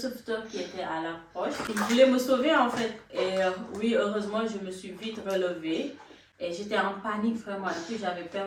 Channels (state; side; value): identical; both; correlation 1.00